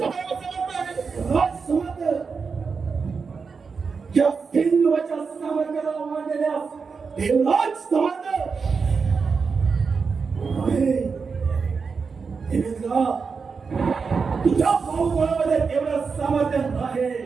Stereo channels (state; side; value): quieter; left; 5.2 dB